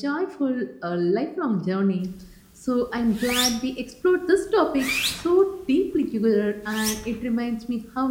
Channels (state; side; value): identical; both; correlation 1.00